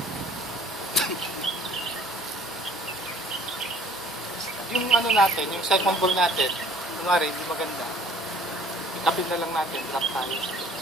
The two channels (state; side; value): normal; both; correlation 0.54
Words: ano natin, yung second ball natin, kunwari, hindi maganda. Itapin na lang natin, drop tayo.